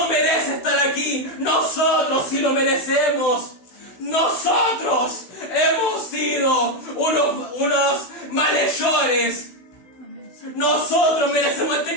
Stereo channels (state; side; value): late; right; 16 ms